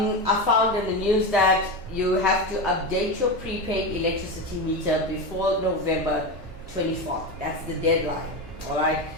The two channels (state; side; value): normal; both; correlation 0.18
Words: found in the news that you have to update your prepaid electricity meter before November 24th. That's the deadline. Alright.